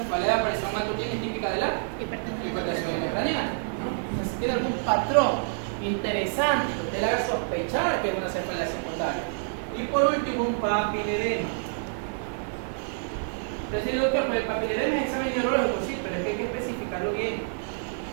de aparición matutina es típica de la hipertensión intracraneal. Entonces, si tiene algún patrón interesante que usted le haga sospechar que es una cefalea secundaria. Y por último, un papiledema. Entonces, doctor, pues el papiledema es examen neurológico, sí, pero es que hay que especificarlo bien.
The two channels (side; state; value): left; silent; 60 dB below the other